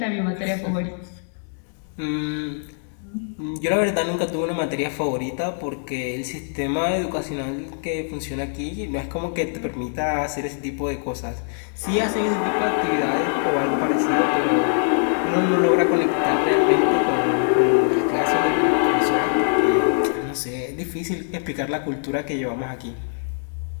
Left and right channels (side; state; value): right; silent; digital silence